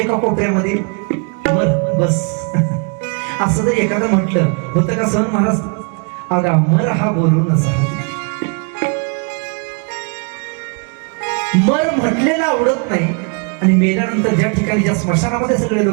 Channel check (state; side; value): quieter; left; 36.0 dB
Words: कोपऱ्यामध्ये मर बस. असं जर एखादं म्हटलं होतं का सहन महाराज? अगा मर हा बोलून असा. मर म्हटलेला आवडत नाही आणि मेल्यानंतर ज्या ठिकाणी ज्या स्मशानामध्ये सगळे